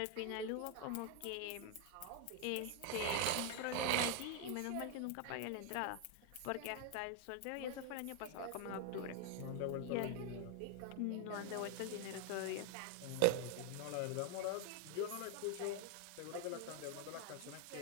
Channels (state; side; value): different; both; correlation 0.01